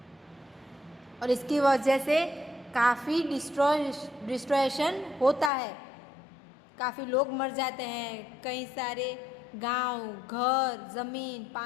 और इसकी वजह से काफ़ी डिस्ट्रॉयशन होता है, काफ़ी लोग मर जाते हैं, कई सारे गांव, घर, ज़मीन,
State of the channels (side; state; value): right; drops out; at 5.5 s